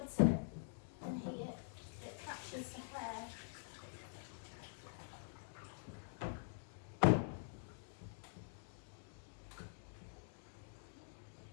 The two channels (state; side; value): silent; right; digital silence